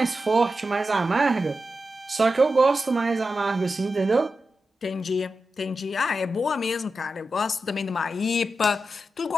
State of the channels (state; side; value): normal; both; correlation 0.90